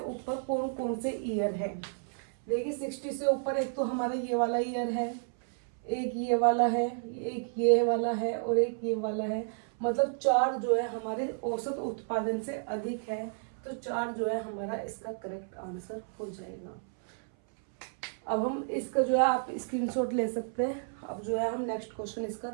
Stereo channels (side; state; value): left; silent; 57 dB below the other